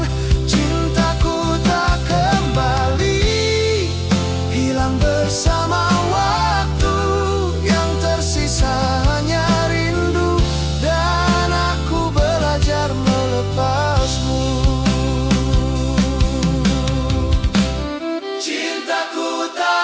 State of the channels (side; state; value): both; identical; correlation 1.00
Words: Cintaku tak kembali, hilang bersama waktu. Yang tersisa hanya rindu, dan aku belajar melepasmu. Cintaku